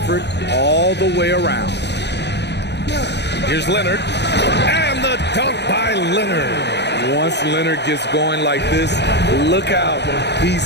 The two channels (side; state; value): right; late; 0.50 ms